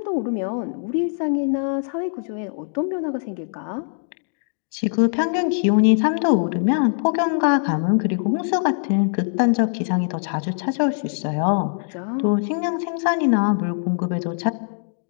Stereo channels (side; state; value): right; silent; digital silence